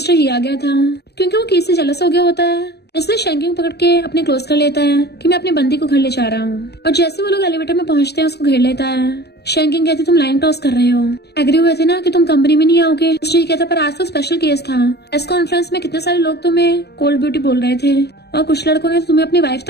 ही आ गया था क्योंकि वो किसी से जेलस हो गया होता है, इसलिए शैंकिंग पकड़ के अपने क्लोज कर लेता है कि मैं अपनी बंदी को घर ले जा रहा हूँ। और जैसे वो लोग एलिवेटर में पहुंचते हैं उसको घेर लेता है। शैंकिंग कहती तुम लाइन टॉस कर रहे हो, एग्री हुए थे ना कि तुम कंपनी में नहीं आओगे। मिस्टर ही कहता पर आज तो स्पेशल केस था, प्रेस कॉन्फ्रेंस में कितने सारे लोग तुम्हें कोल्ड ब्यूटी बोल रहे थे और कुछ लड़कों ने तुम्हें अपनी वाइफ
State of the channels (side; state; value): right; late; 0.48 ms